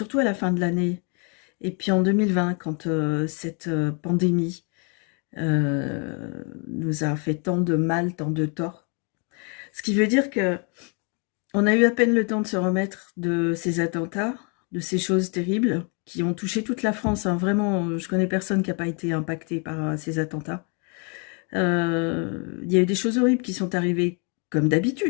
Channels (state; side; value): quieter; right; 36.3 dB